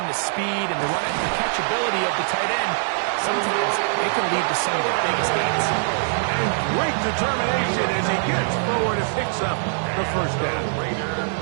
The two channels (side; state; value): left; silent; digital silence